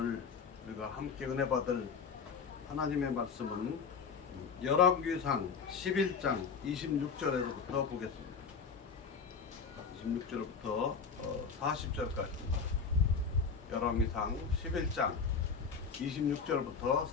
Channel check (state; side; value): quieter; right; 5.6 dB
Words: 우리가 함께 은혜 받을 하나님의 말씀은 열왕기상 11장 26절에서부터 보겠습니다. 26절부터 40절까지입니다. 열왕기상 11장 26절부터